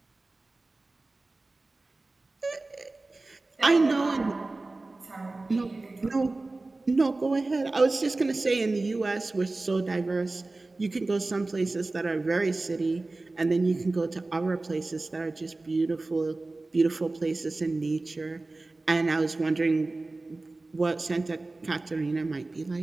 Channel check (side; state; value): left; quieter; 3.2 dB